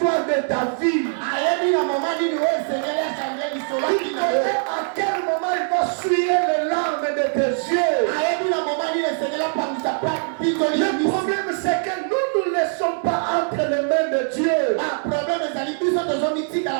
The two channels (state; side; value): silent; left; digital silence